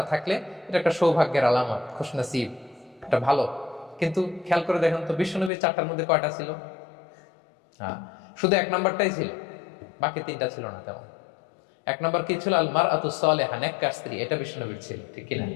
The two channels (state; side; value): drops out; right; at 5.5 s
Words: থাকলে এটা একটা সৌভাগ্যের আলামত, খুশনসিব, এটা ভালো। কিন্তু খেয়াল করে দেখেন তো বিশ্বনবীর চারটার মধ্যে কয়টা ছিল? শুধু এক নাম্বারটাই ছিল, বাকি তিনটা ছিল না তেমন। এক নাম্বার কি ছিল? আল মারআতু সালিহা, নেককার স্ত্রী, এটা বিশ্বনবীর ছিল, ঠিক কিনা?